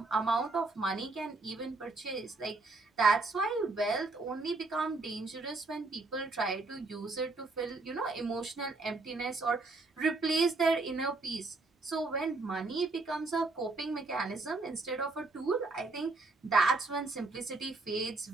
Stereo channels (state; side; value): quieter; left; 3.5 dB